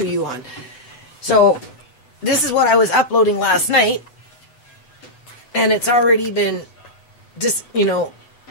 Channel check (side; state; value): right; late; 8.0 ms